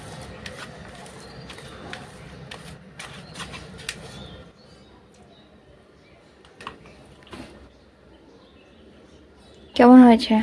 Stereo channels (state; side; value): identical; both; correlation 1.00